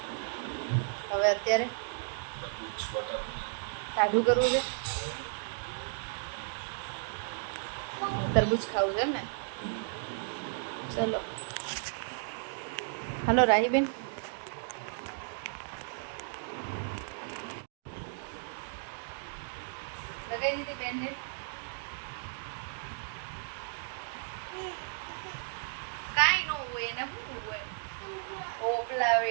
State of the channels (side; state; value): left; silent; digital silence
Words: હવે અત્યારે ટાઢું કરવું છે. તરબૂચ ખાવું છે એમ ને? ચલો હલો રાહીબેન. લગાવી દીધી બેનને? કાંઈ ન હોય એને શું હોય? પોપલા